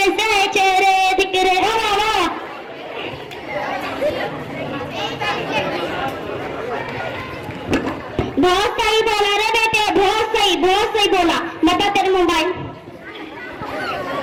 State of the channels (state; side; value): identical; both; correlation 1.00